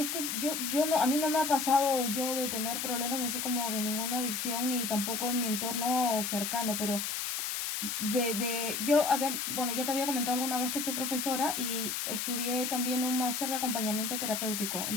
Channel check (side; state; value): left; noise; hiss, 2 dB below the sound